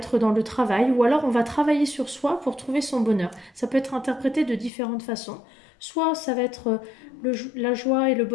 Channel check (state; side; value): drops out; right; at 4.7 s